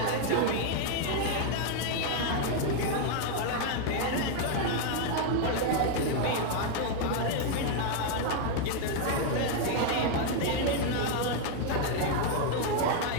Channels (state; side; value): different; both; correlation 0.00